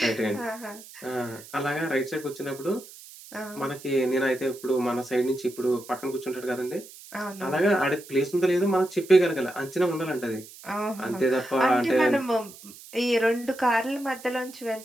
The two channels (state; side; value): noise; right; hiss, 18 dB below the sound